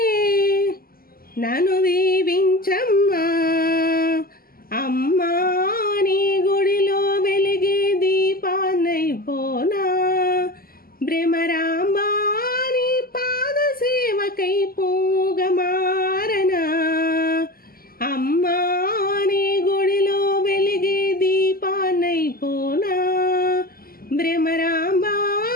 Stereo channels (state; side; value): late; right; 0.42 ms